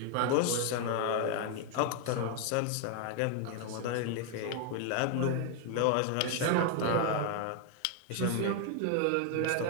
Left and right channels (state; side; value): different; both; correlation 0.00